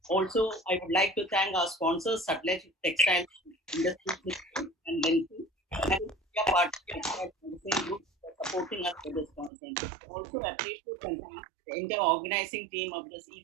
Also, I would like to thank our sponsors, Gartex Textile Industry and Lenthi, and India Party Group for supporting us for this conference. Also, appreciate and thank the entire organizing team of this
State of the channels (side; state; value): left; drops out; at 9.5 s